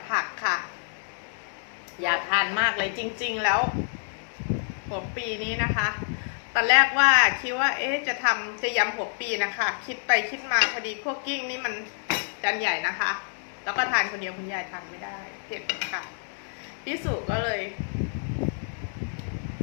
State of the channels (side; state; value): right; silent; 60 dB below the other